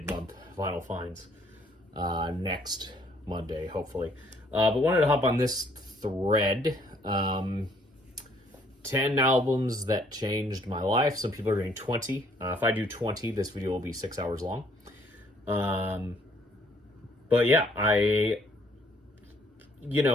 Vinyl Finds next Monday, hopefully. But wanted to hop on this thread. 10 albums that changed my life. Some people are doing 20. If I do 20, this video will be 6 hours long. But yeah,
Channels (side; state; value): both; normal; correlation 0.64